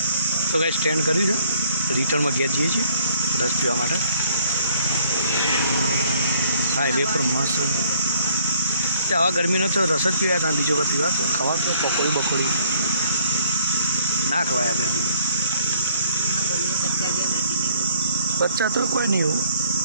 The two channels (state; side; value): inverted; both; correlation -0.62